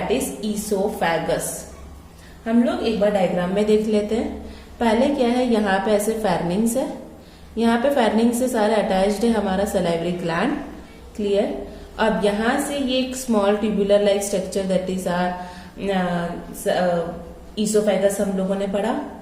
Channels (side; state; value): both; identical; correlation 1.00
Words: is oesophagus. हम लोग एक बार डायग्राम में देख लेते हैं। पहले क्या है, यहाँ पे ऐसे फेर्निक्स है, यहाँ पे फेर्निक्स से सारे अटैच्ड है हमारा सलाइवरी ग्लैंड। क्लियर, अब यहाँ से ये एक small tubular like structure that is are oesophagus हम लोगों ने पढ़ा।